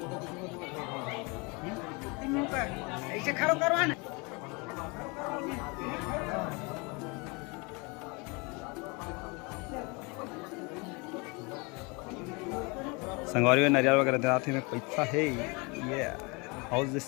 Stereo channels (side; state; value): right; quieter; 28.9 dB